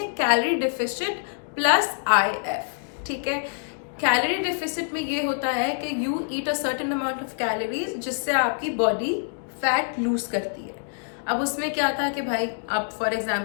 कैलोरी डिफिसिट प्लस IF, ठीक है। कैलोरी डिफिसिट में ये होता है कि you eat a certain amount of calories जिससे आपकी बॉडी फैट लूज करती है। अब उसमें क्या था कि भाई अब फॉर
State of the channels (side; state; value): right; silent; digital silence